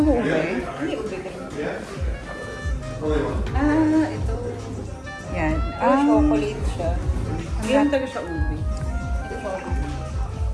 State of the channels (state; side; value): identical; both; correlation 1.00